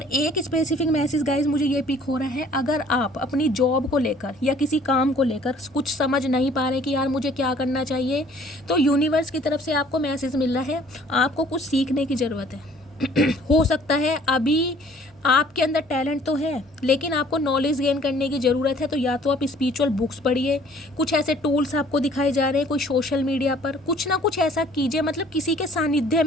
एक स्पेसिफिक मैसेज गाइज मुझे ये पिक हो रहा है, अगर आप अपनी जॉब को लेकर या किसी काम को लेकर कुछ समझ नहीं पा रहे कि यार मुझे क्या करना चाहिए, तो यूनिवर्स की तरफ से आपको मैसेज मिल रहा है, आपको कुछ सीखने की ज़रूरत है। हो सकता है अभी आपके अंदर टैलेंट तो है, लेकिन आपको नॉलेज गेन करने की ज़रूरत है। तो या तो आप स्पिरिचुअल बुक्स पढ़िए, कुछ ऐसे टूल्स आपको दिखाए जा रहे हैं, कोई सोशल मीडिया पर कुछ ना कुछ ऐसा कीजिए, मतलब किसी के सानिध्य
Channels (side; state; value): both; normal; correlation 0.56